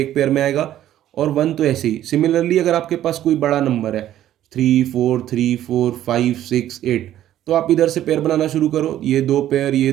पेयर में आएगा, और 1 तो ऐसे ही। सिमिलरली अगर आपके पास कोई बड़ा नंबर है 3 4 3 4 5 6 8, तो आप इधर से पेयर बनाना शुरू करो, ये 2 पेयर,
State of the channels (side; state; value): left; quieter; 12.3 dB